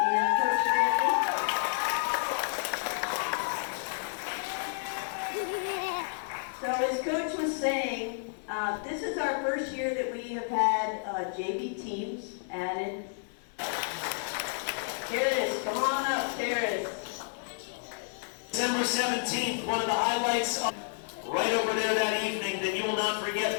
Coach Brantley. So as Coach was saying, this is our first year that we have had JV teams added. Here it is. Come on up. There it is. December 17th, one of the highlights right over there that evening that you will not forget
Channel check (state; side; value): silent; right; digital silence